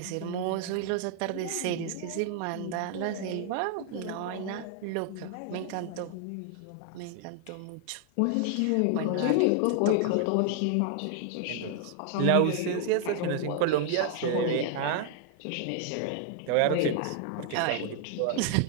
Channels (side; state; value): both; different; correlation 0.00